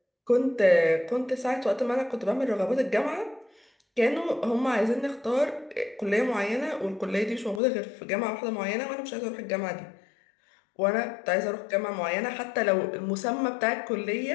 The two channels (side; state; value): right; drops out; at 7.6 s